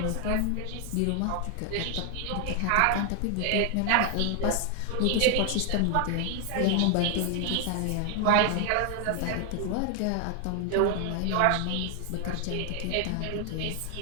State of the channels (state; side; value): different; both; correlation 0.00